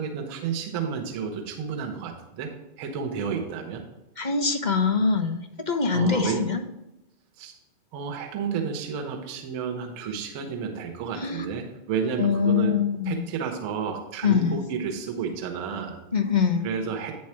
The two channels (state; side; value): late; left; 2.1 ms